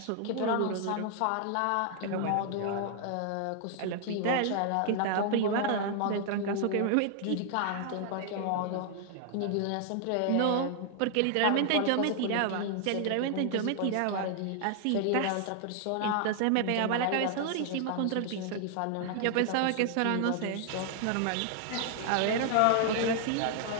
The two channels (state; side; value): different; both; correlation 0.00